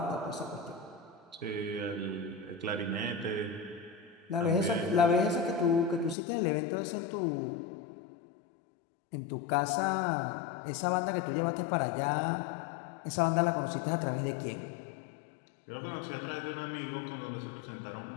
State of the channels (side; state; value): right; drops out; at 6.2 s